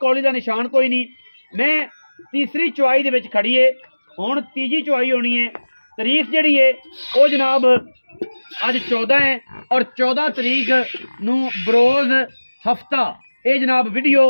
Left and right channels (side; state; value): both; inverted; correlation -1.00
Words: का निशान कोई नहीं। मैं तीसरी चुआई दे विच खड़ी है हुण तीजी चुआई होनी है। तारीख जिहड़ी है वो जनाब अज 14 है और 14 तरीक नूं बरोज़ हफ्ता ये जनाब वीडियो